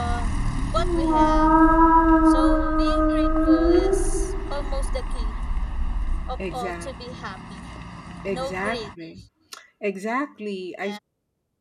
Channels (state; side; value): identical; both; correlation 1.00